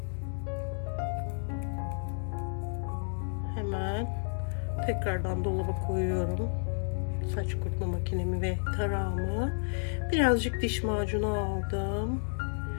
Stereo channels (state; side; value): silent; right; digital silence